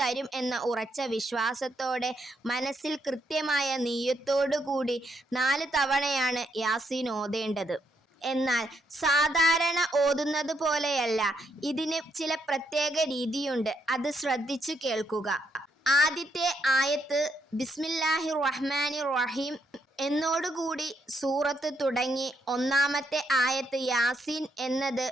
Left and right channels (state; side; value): normal; both; correlation 0.76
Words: എന്ന ഉറച്ച വിശ്വാസത്തോടെ മനസ്സിൽ കൃത്യമായ നിയ്യത്തോടു കൂടി 4 തവണയാണ് യാസീൻ ഓതേണ്ടത്. എന്നാൽ സാധാരണ ഓതുന്നത് പോലെയല്ല, ഇതിന് ചില പ്രത്യേക രീതിയുണ്ട്. അത് ശ്രദ്ധിച്ചു കേൾക്കുക. ആദ്യത്തെ ആയത്ത് ബിസ്മില്ലാഹിർ റഹ്മാനിർ റഹീം എന്നോടുകൂടി സൂറത്ത് തുടങ്ങി ഒന്നാമത്തെ ആയത്ത് യാസീൻ എന്നത്